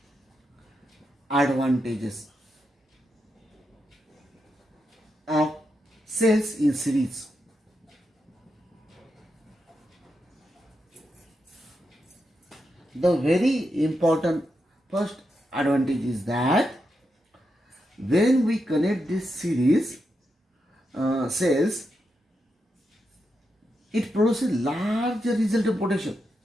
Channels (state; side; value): normal; both; correlation 0.85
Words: Of cells in series. The very important first advantage is that when we connect this series cells, it produces large resultant potential.